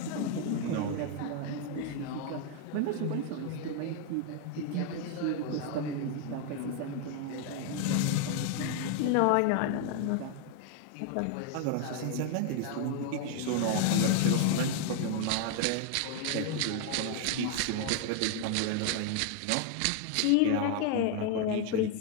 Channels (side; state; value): both; different; correlation 0.00